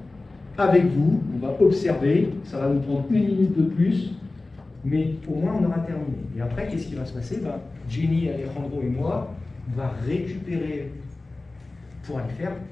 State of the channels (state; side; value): quieter; right; 3.2 dB